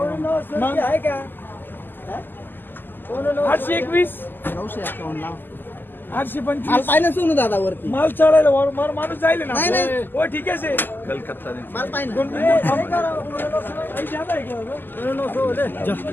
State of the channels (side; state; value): right; late; 0.092 ms